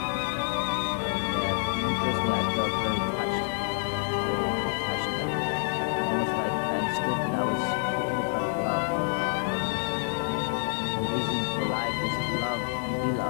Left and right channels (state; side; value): silent; right; digital silence